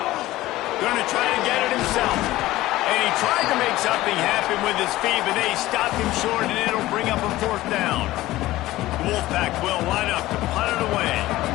Going to try to get it himself. And he tried to make something happen with his feet, but they stopped him short, and it'll bring up a 4th down. The Wolfpack will line up to punt it away.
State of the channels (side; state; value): right; quieter; 16.8 dB